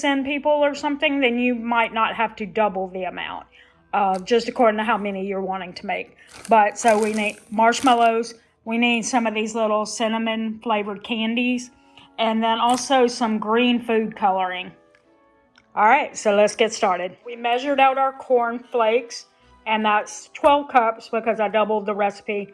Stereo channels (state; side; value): identical; both; correlation 1.00